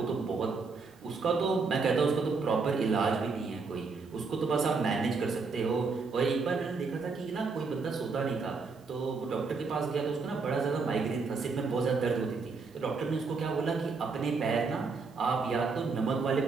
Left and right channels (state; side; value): quieter; left; 4.5 dB